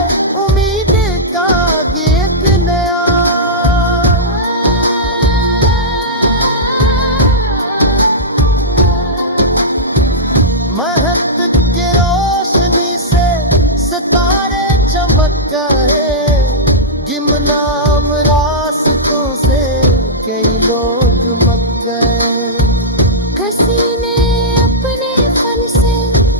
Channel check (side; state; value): both; normal; correlation -0.12